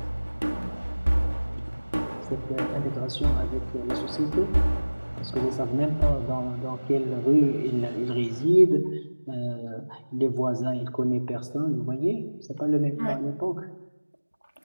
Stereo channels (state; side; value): inverted; both; correlation -1.00